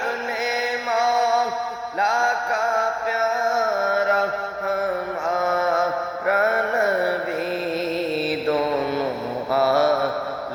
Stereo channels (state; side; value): identical; both; correlation 1.00